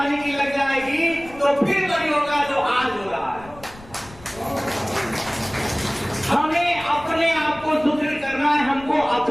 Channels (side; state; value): left; noise; rumble, 21 dB below the sound